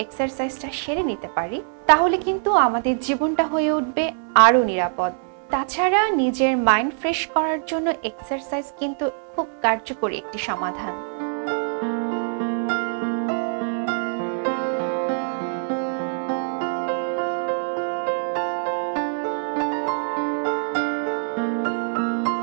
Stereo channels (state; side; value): silent; left; 63 dB below the other